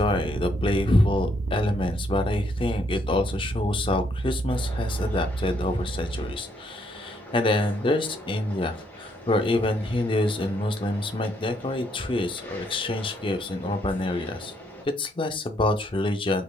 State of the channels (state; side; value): normal; both; correlation 0.72